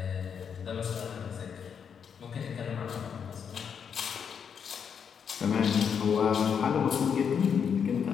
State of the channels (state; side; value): quieter; right; 7.2 dB